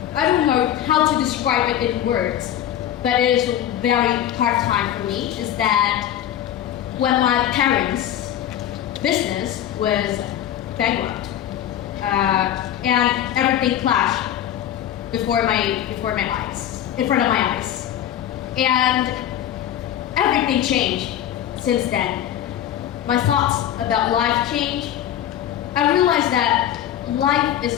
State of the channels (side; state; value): right; quieter; 11.2 dB